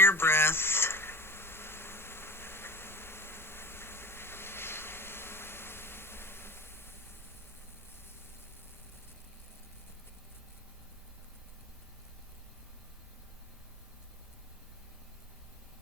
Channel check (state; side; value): normal; both; correlation 0.36